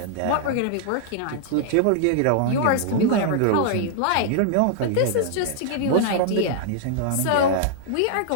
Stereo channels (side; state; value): both; different; correlation -0.01